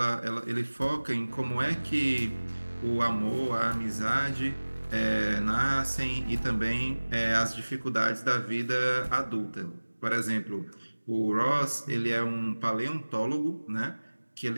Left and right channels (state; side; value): inverted; both; correlation -1.00